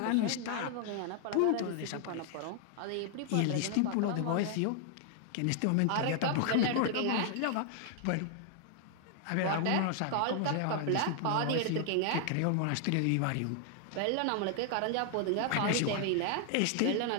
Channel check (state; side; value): different; both; correlation 0.00